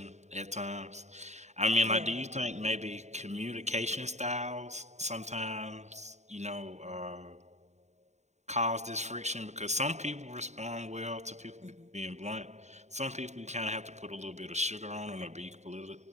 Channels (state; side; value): late; left; 0.33 ms